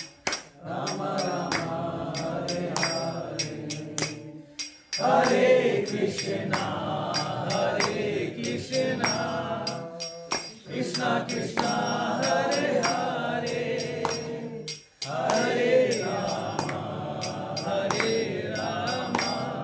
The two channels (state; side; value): identical; both; correlation 1.00